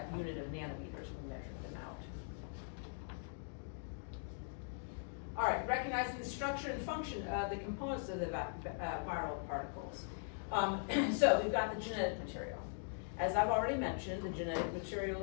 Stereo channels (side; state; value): right; silent; digital silence